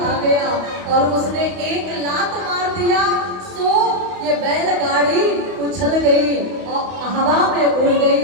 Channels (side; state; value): left; late; 31 ms